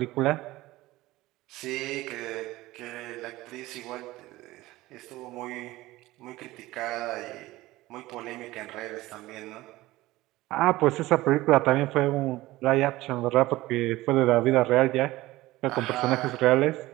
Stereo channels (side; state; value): left; quieter; 18.1 dB